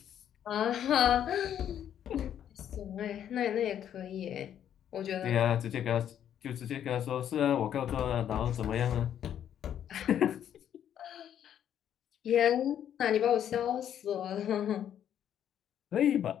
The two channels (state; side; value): quieter; right; 9.9 dB